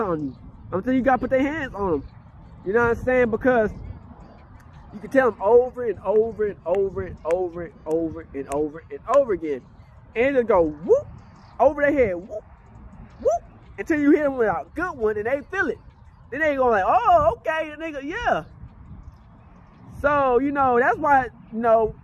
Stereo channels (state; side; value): identical; both; correlation 1.00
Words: you. Until you gotta put their hands on them. You know what I'm saying? Because You can tell him over and over and over and over and over and over and over again. And it'll go whoop over their head, whoop, whoop, until you hit them with a good one and they feel it. Then they go like, oh, okay, and they go, yeah. So, you know, that's why, you know,